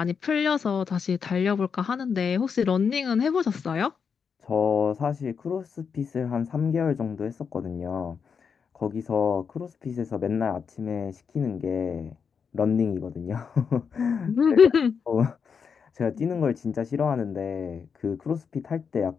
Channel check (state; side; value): quieter; right; 6.3 dB